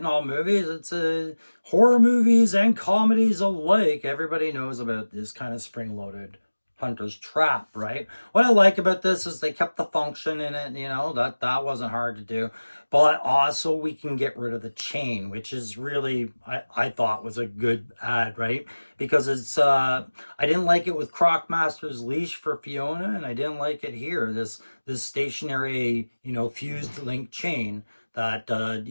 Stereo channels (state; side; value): inverted; both; correlation -1.00